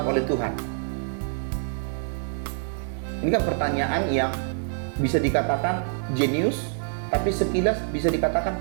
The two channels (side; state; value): left; silent; digital silence